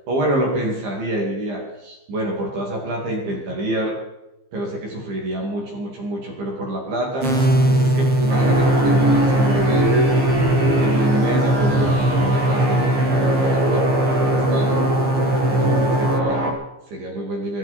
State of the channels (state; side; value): late; left; 15 ms